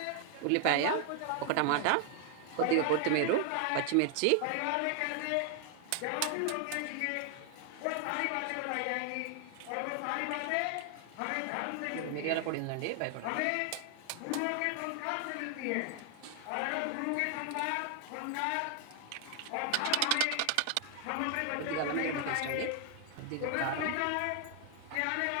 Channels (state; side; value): different; both; correlation 0.00